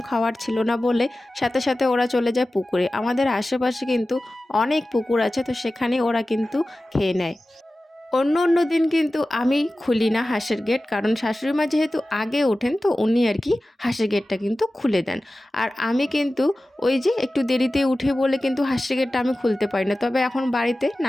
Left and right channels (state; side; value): normal; both; correlation 0.96